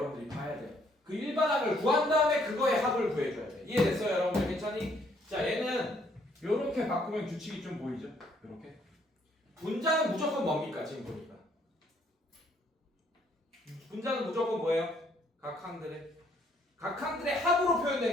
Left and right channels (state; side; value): normal; both; correlation 0.67